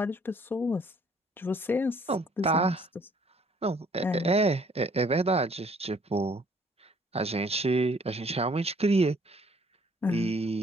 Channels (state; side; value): normal; both; correlation 0.61